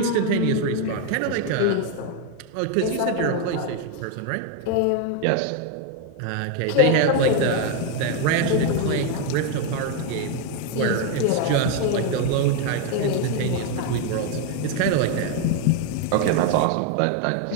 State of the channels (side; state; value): both; different; correlation 0.01